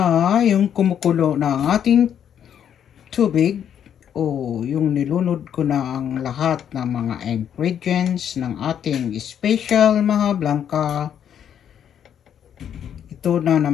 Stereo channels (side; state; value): right; quieter; 9.1 dB